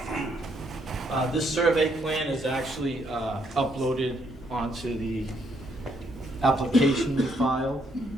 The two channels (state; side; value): normal; both; correlation 0.72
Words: This survey plan is actually uploaded onto the application we filed.